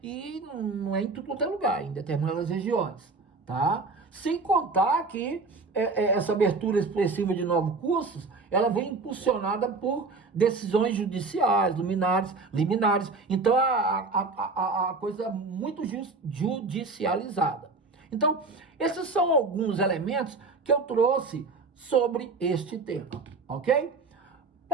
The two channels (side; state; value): left; quieter; 3.9 dB